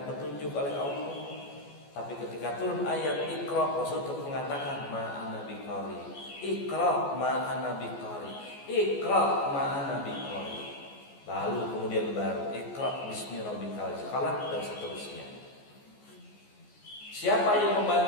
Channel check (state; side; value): late; right; 14 ms